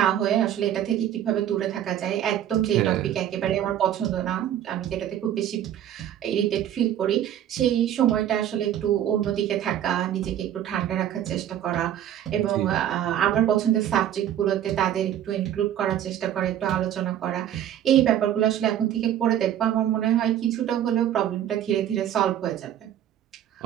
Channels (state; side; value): quieter; left; 10.9 dB